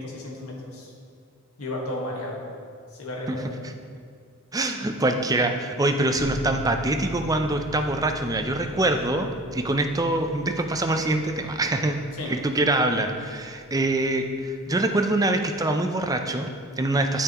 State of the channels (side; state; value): both; normal; correlation 0.43